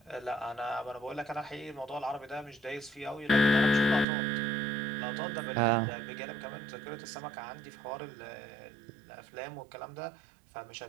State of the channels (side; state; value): left; drops out; at 4.0 s